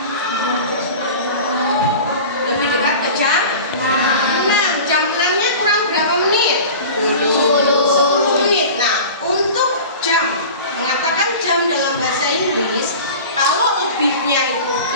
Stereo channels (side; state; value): both; inverted; correlation -0.36